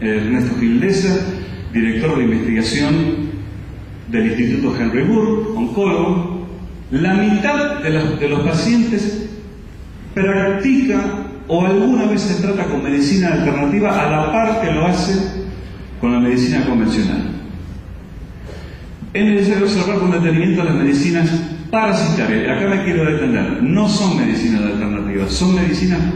Ernesto Gildesa, director de investigación del Instituto Henry Moore, oncólogo, la mitad de los pacientes practica o alguna vez se trata con medicina alternativa a la par que lo hace con la medicina convencional. Es necesario observar con detenimiento las medicinas parasitarias. Acá me quiero detener. No son medicinas alternativas, son medicinas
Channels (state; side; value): identical; both; correlation 1.00